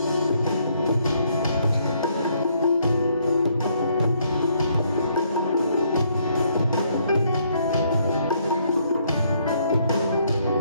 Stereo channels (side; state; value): both; inverted; correlation -0.70